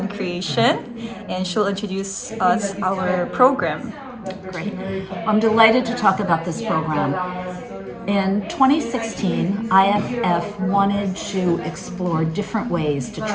Creation, and she'll introduce us our program. Great. I'm delighted to talk about this program. In 2016, IFF wanted to explore different ways to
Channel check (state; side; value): identical; both; correlation 1.00